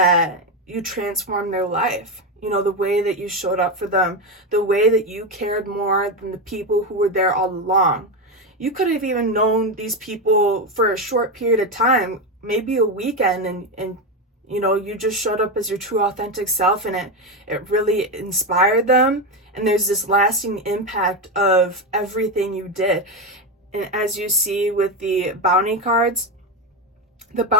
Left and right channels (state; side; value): normal; both; correlation 0.12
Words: you transformed their life. The way that you showed up for them, the way that you cared more than the people who were there all along. You could have even known these people for a short period of time, maybe a weekend, and you just showed up as your true authentic self, and it really inspired them. And there's this lasting impact of everything you did. And as you see with the bounty cards, the